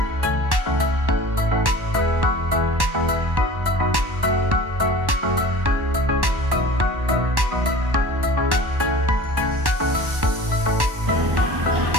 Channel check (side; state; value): left; late; 1.1 ms